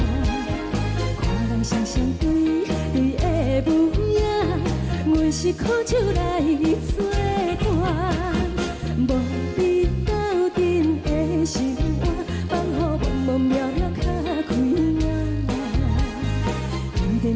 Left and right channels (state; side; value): identical; both; correlation 1.00